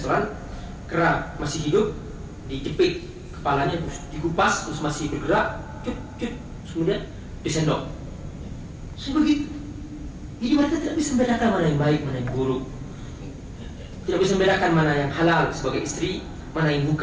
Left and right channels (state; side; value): identical; both; correlation 1.00